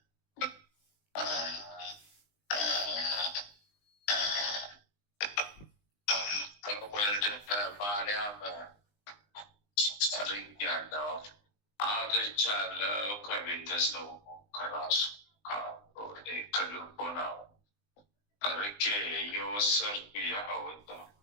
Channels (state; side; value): late; right; 19 ms